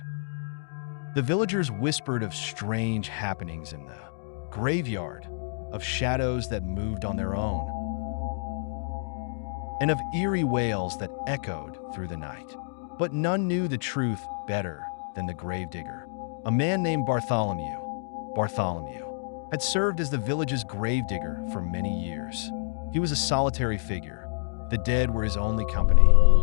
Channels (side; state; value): right; silent; digital silence